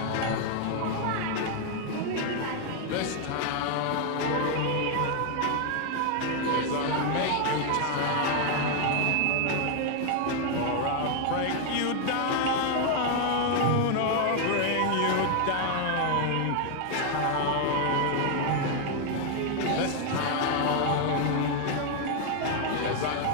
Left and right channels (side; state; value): both; different; correlation 0.01